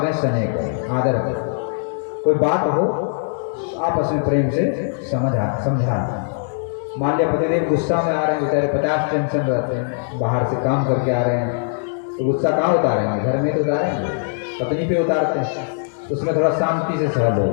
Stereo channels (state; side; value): silent; right; digital silence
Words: स्नेह करें, आदर करें। कोई बात हो आपस में प्रेम से समझा। मान लिया पतिदेव गुस्सा में आ रहे हैं, बेचारे 50 टेंशन रहते हैं, बाहर से काम करके आ रहे हैं, तो गुस्सा कहाँ उतारेंगे, घर में तो उतारेंगे, पत्नी पे उतारते हैं, तो उसमें थोड़ा शांति से सह लो,